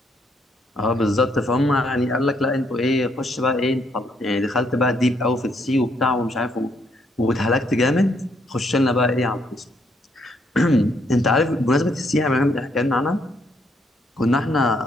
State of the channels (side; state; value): both; normal; correlation 0.72